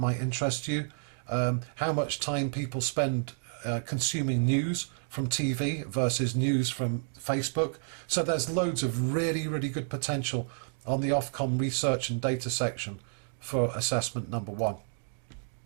might interest you, how much time people spend consuming news from TV versus news from Facebook. So there's loads of really, really good potential on the Ofcom research and data section for assessment #1.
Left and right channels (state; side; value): silent; left; digital silence